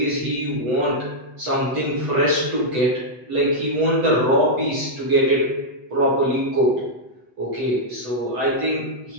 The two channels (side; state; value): left; late; 8.0 ms